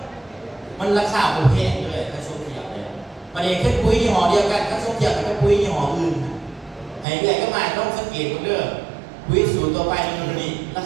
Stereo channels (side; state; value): left; drops out; at 7.1 s